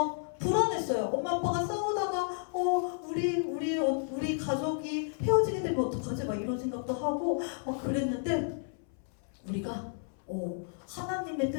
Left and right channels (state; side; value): silent; right; 56 dB below the other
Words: 불안했어요. 엄마 아빠가 싸우다가 우리 가족이 헤어지게 되면 어떡하지? 막 이런 생각도 하고 막 그랬는데 우리가 하나님의